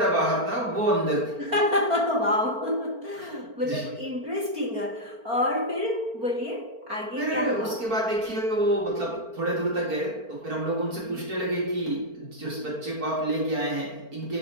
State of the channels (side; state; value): left; late; 4.4 ms